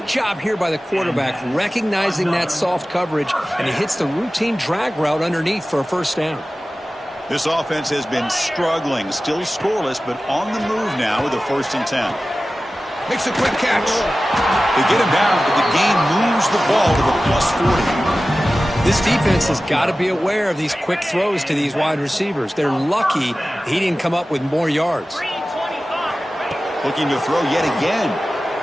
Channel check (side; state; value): both; normal; correlation 0.96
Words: job here by the quarterback recognizing that soft coverage, and he hits the routine drag route underneath for a first down. This offense has been struggling, still scoreless, but on the move now with a 1st and 10. Makes a quick catch. They get him down, but the gain moves the ball to the +40. This defense has got to be aware of these quick throws to these wide receivers. They're lucky he didn't come up with more yards. Looking to throw yet again.